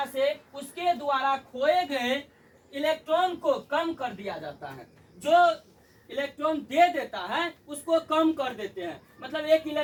से उसके द्वारा खोए गए इलेक्ट्रॉन को कम कर दिया जाता है। जो इलेक्ट्रॉन दे देता है उसको कम कर देते हैं। मतलब एक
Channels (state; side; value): identical; both; correlation 1.00